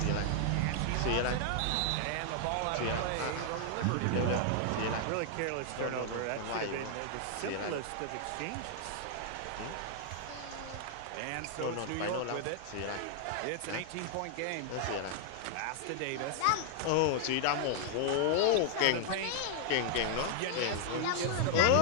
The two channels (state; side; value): different; both; correlation -0.01